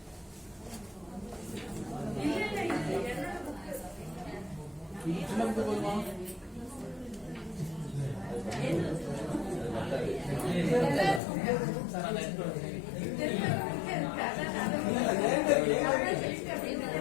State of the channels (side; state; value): right; drops out; at 11.2 s